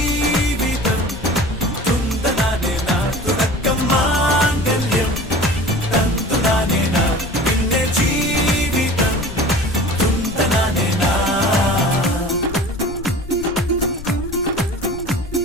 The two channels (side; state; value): left; noise; rumble, 12 dB below the sound